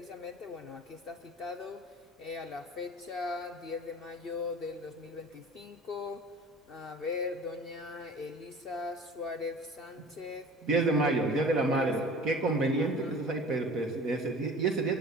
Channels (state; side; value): normal; both; correlation 0.42